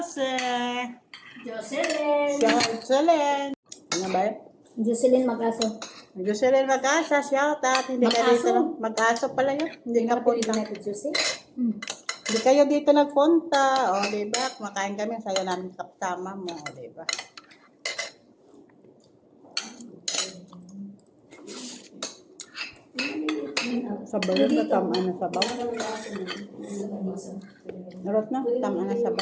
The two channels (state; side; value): identical; both; correlation 1.00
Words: Jocelyn! Jocelyn! Ano ba yun? Jocelyn Mag-aso. Jocelyn Mag-asa, shout out. Hindi ka Mag-aso? dito. Mag-aso pala yun. Hindi ka punta. na tidjusi. Hindi kayo dito nagpunta. O, diba? Kumakain kami. Sayo namin kaptama mo. O, diba? Sabaw na tama na sabaw. Narot na, tama na